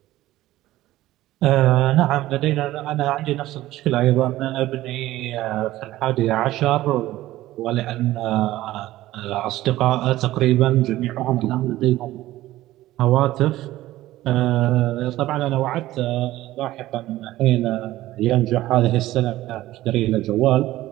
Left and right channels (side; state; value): left; quieter; 15.8 dB